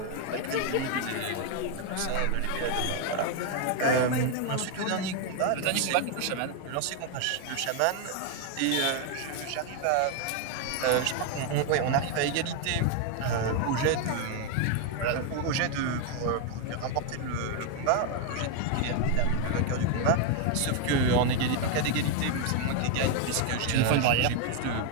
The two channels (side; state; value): both; different; correlation 0.01